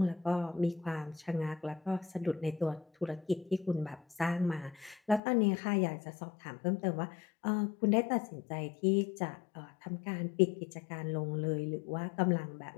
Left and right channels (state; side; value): drops out; right; at 5.2 s